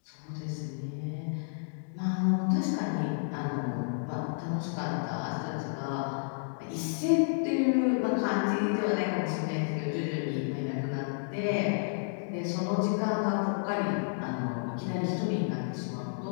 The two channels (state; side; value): silent; right; digital silence